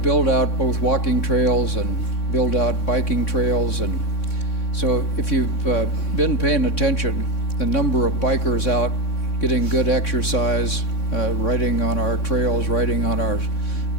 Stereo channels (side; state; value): right; late; 3.6 ms